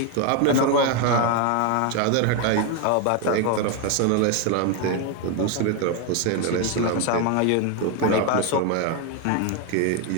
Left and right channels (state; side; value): different; both; correlation 0.01